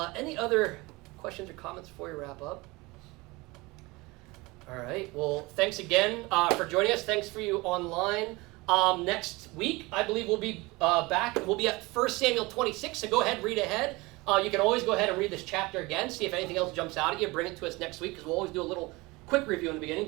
Any other questions or comments before we wrap up? All right, well, thanks again for joining us. Thanks for you online. Next week, I believe we'll be back. We'll be at 1 Samuel 26, so go ahead, read ahead. You can always go ahead and read this chapter again, see if anything else jumps out at you. Bring it to us next week, because we'll always do a little quick review in the beginning,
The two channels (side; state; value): left; quieter; 23.2 dB